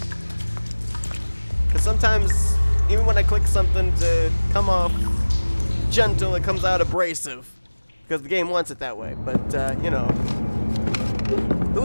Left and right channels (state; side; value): inverted; both; correlation -1.00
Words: Because sometimes, even when I click something to come off gentle, it comes out abrasive. Because the game wants it that way. But, you know. Who